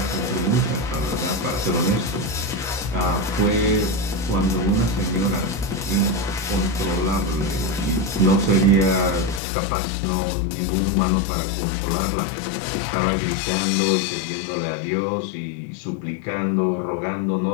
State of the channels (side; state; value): right; drops out; at 9.4 s